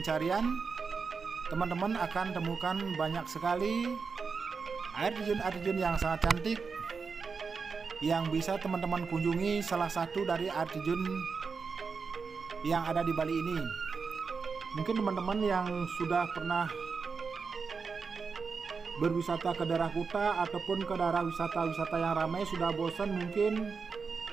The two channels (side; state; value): left; quieter; 5.1 dB